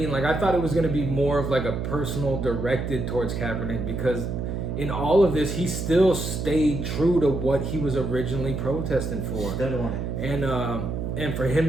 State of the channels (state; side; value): noise; right; hum, 3 dB below the sound